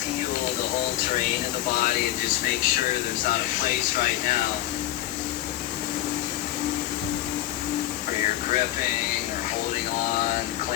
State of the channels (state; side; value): quieter; right; 14.6 dB